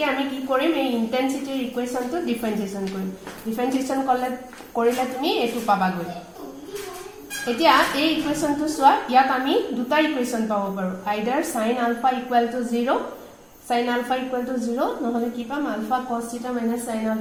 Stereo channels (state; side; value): identical; both; correlation 1.00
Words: আমি কি কৰিম এই ইন্টেন্সিটিৰ ইকুয়েশনটো ডিফাৰেন্সিয়েশন কৰিম ডিফাৰেন্সিয়েশন কৰিলে তুমি এটো পাবা গৈ এতিয়া এই ইকুয়েশনটো সোৱা ইয়াত আমি দুটা ইকুয়েশন পাব পাৰো আইদাৰ sin alpha equal to 0 sin alpha equal to 0 নহলে কি পাম alpha cos theta minus sin